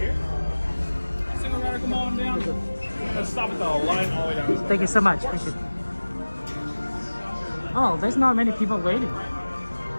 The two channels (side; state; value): both; inverted; correlation -1.00